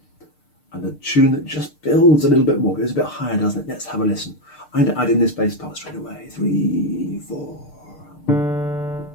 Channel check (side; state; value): right; late; 6.6 ms